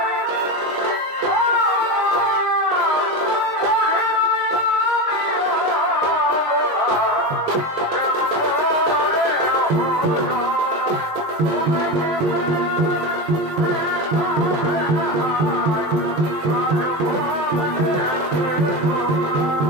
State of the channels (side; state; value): left; late; 20 ms